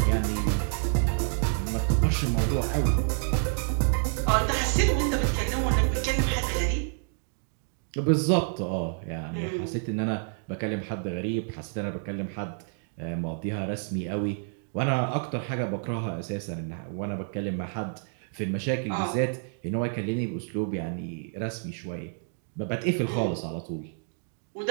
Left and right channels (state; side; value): silent; left; 59 dB below the other